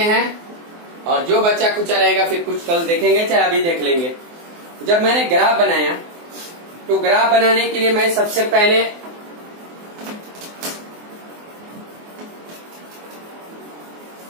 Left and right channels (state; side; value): late; left; 24 ms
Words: हैं, और जो बच्चा कुछ रहेगा फिर कुछ कल देखेंगे चाहे अभी देख लेंगे। जब मैंने ग्राफ बनाया तो ग्राफ बनाने के लिए मैं सबसे पहले